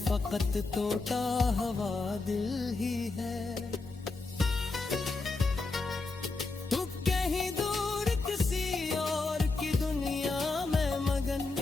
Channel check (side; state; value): right; quieter; 3.7 dB